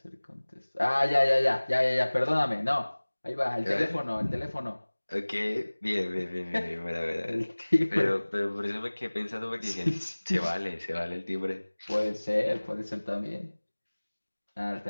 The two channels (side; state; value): both; inverted; correlation -1.00